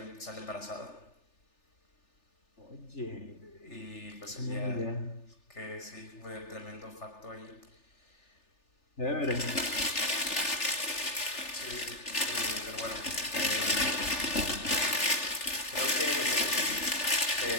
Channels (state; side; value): late; right; 3.4 ms